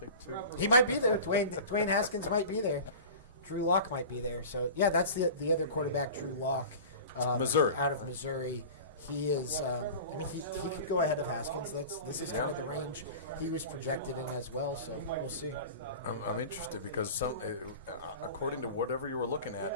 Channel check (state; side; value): inverted; both; correlation -0.36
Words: 2. He might be there. Dwayne Haskins might be there. Drew Lock might be there. So yeah, that's the other quarterback, Drew Lock, Missouri, out of Missouri. He is. He could go ahead of Haskins. This is kind of the range he was projected in as well. So we'll see. I'm interested because according to whatever you were looking